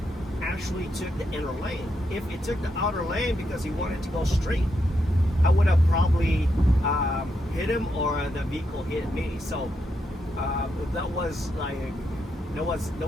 actually took the inner lane. If it took the outer lane because he wanted to go straight, I would have probably hit him, or the vehicle hit me. So that was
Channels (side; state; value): both; normal; correlation 0.82